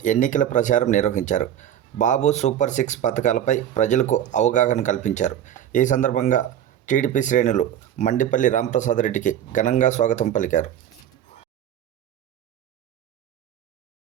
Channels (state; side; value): quieter; left; 10.6 dB